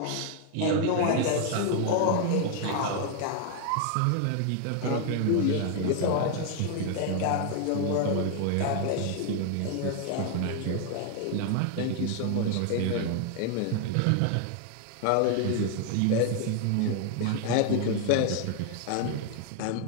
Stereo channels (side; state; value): both; different; correlation 0.00